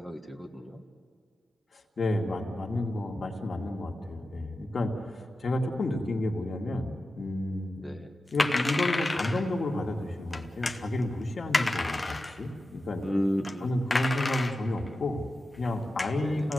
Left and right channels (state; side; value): normal; both; correlation 0.92